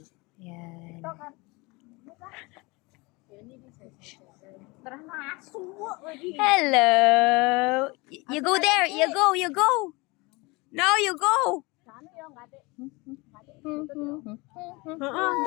Yan. Hello. You go there. You go. No, you go.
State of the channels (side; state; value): right; quieter; 25.2 dB